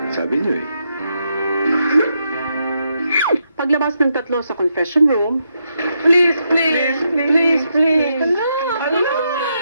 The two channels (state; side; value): inverted; both; correlation -0.81